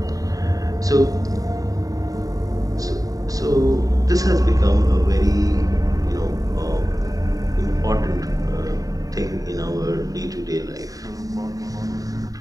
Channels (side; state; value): left; late; 0.17 ms